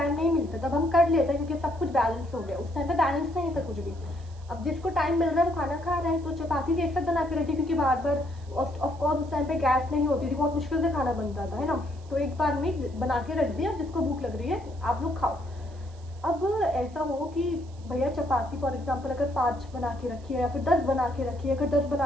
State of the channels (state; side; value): noise; right; hiss, 27 dB below the sound